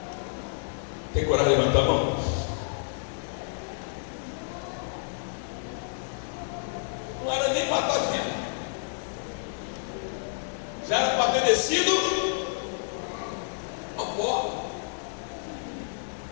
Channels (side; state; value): right; silent; digital silence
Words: Tem coragem de levantar a mão? Não era nem para estar vivo, já era para ter descido